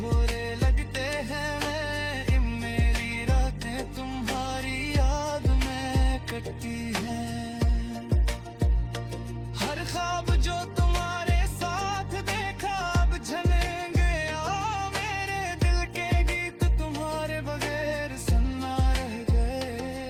लगते हैं। मेरी रातें तुम्हारी याद में कटती हैं। हर ख्वाब जो तुम्हारे साथ देखा अब झलक गया। मेरे दिल के गीत तुम्हारे बगैर सुनना रह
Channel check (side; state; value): both; identical; correlation 1.00